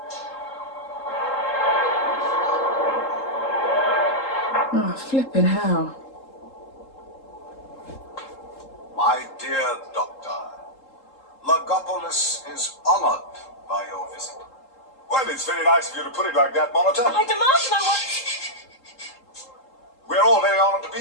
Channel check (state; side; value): late; right; 3.8 ms